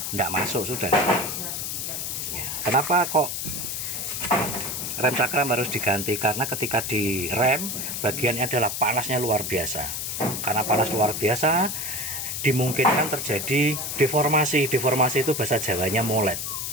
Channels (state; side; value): noise; left; hiss, 4 dB below the sound